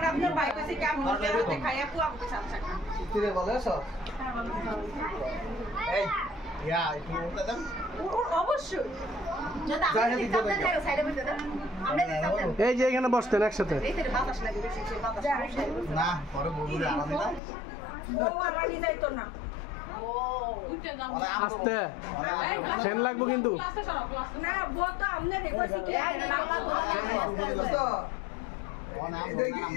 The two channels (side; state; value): right; drops out; at 17.4 s